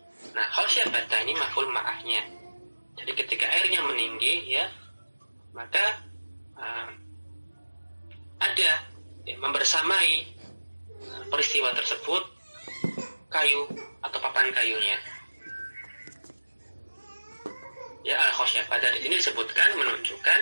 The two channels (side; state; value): both; inverted; correlation -1.00